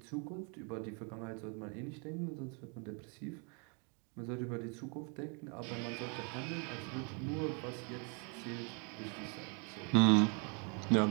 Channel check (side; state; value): left; quieter; 37.1 dB